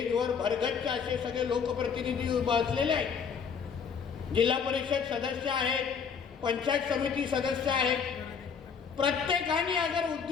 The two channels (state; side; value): quieter; right; 6.4 dB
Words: भरगच्च असे सगळे लोकप्रतिनिधी बसलेले आहेत. जिल्हा परिषद सदस्य आहेत, पंचायत समिती सदस्य आहेत. प्रत्येकाने अगर